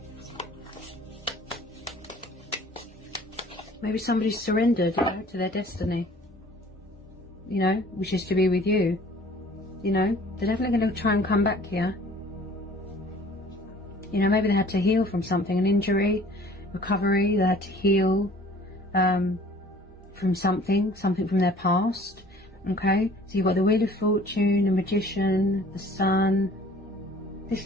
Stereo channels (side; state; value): both; normal; correlation 0.51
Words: Maybe somebody's surrendered, you know, to their destiny, you know, which is to be with you. You know, they're definitely going to try and come back here. You know, maybe they had to heal from something, an injury, recovery. They had to heal from something from their past. Okay, so you've got the Wheel of Fortune, the Magician, the Sun. This